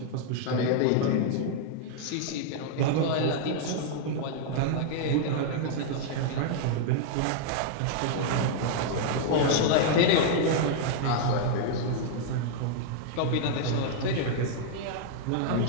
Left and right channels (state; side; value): different; both; correlation -0.01